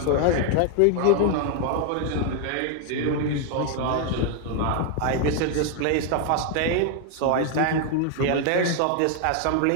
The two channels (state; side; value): different; both; correlation 0.00